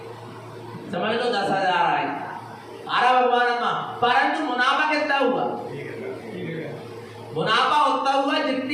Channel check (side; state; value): both; identical; correlation 1.00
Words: समझ लो 10,000 आए। आरा भगवान आत्मा, परंतु मुनाफा कितना हुआ? मुनाफा उतना हुआ